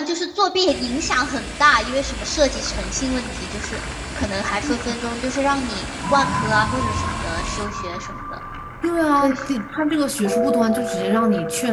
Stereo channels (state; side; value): identical; both; correlation 1.00